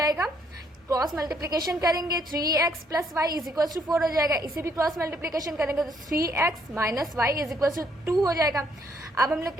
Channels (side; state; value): both; normal; correlation 0.69